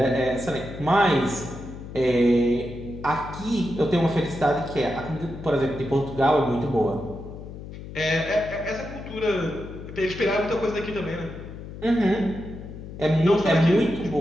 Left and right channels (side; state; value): left; noise; hum, 12 dB below the sound